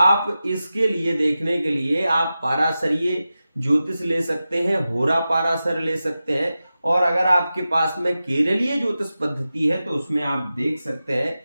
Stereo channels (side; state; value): both; inverted; correlation -0.93